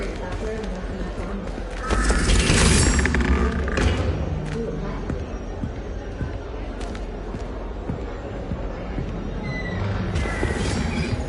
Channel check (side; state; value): both; identical; correlation 1.00